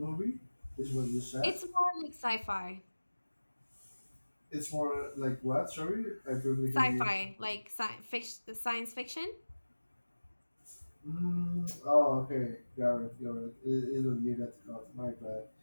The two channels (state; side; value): inverted; both; correlation -1.00